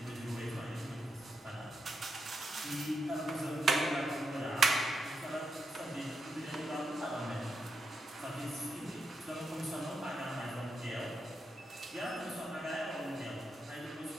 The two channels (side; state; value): both; normal; correlation 0.84